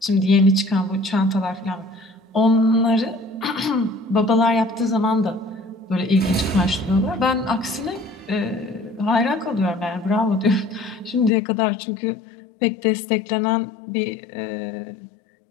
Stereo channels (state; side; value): drops out; right; at 11.3 s